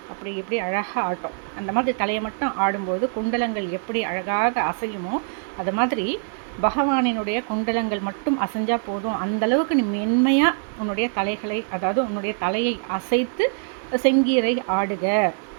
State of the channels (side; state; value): left; silent; 63 dB below the other